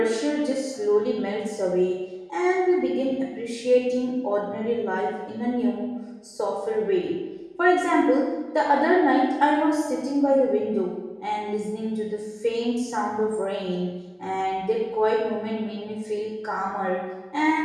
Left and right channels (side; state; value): both; identical; correlation 1.00